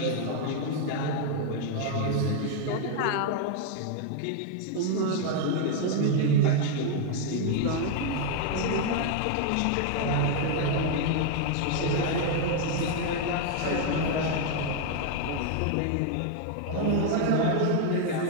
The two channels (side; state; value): both; different; correlation 0.00